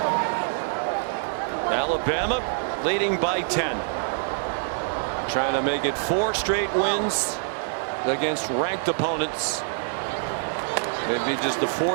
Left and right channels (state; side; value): silent; left; digital silence